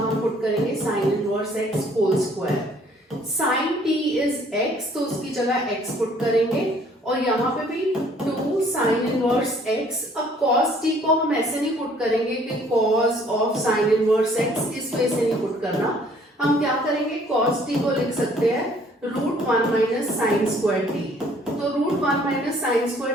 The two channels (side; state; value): both; normal; correlation 0.59